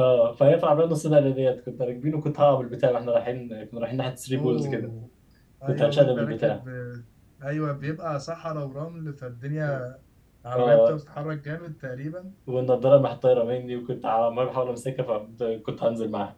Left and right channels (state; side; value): identical; both; correlation 1.00